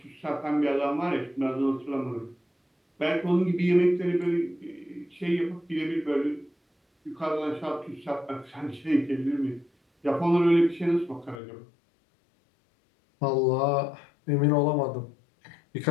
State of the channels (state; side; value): drops out; right; at 11.4 s